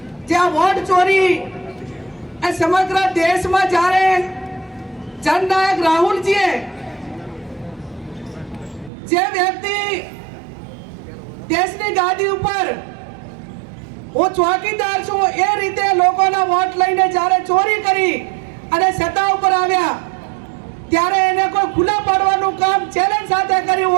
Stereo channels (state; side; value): drops out; left; at 8.9 s